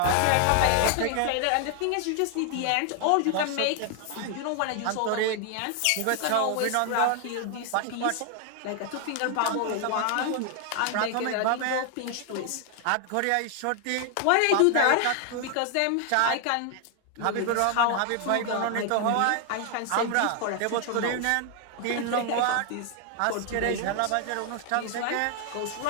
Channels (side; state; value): both; different; correlation 0.00